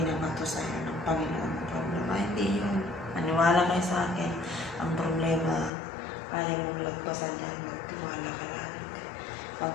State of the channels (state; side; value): drops out; right; at 5.7 s